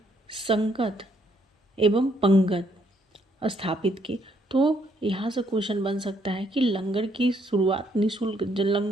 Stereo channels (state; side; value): normal; both; correlation 0.70